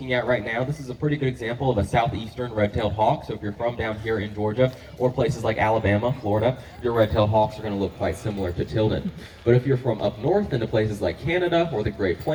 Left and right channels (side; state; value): both; identical; correlation 1.00